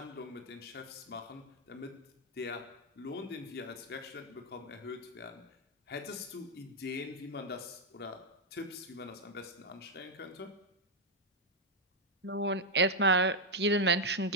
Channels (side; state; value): both; normal; correlation 0.00